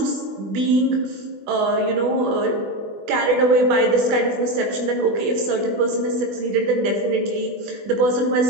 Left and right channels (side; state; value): left; late; 21 ms